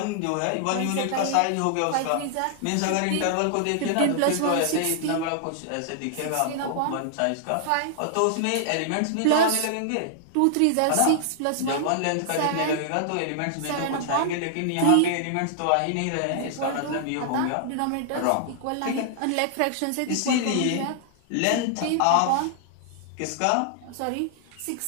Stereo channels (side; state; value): both; different; correlation -0.01